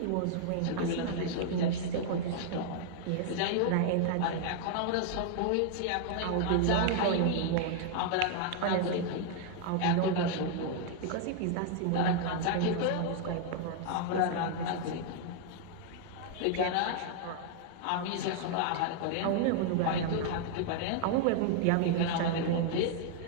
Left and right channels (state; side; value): different; both; correlation 0.00